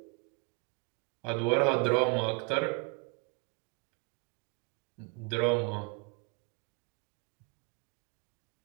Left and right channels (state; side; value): quieter; left; 28.4 dB